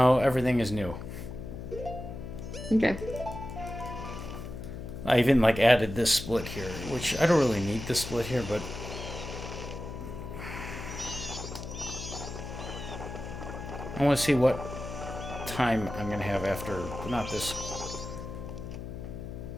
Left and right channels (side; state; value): left; noise; hum, 9 dB below the sound